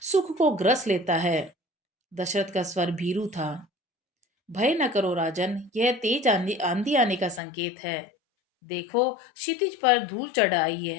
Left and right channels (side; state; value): right; drops out; at 7.4 s